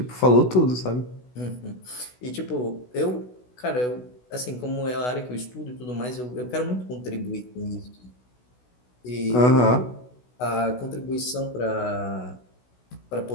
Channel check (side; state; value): right; late; 16 ms